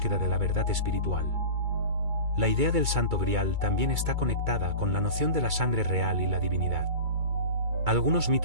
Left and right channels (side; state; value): left; late; 2.3 ms